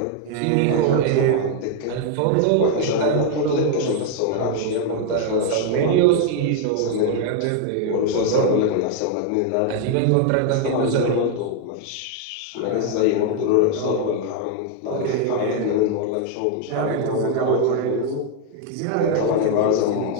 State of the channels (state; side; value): different; both; correlation 0.00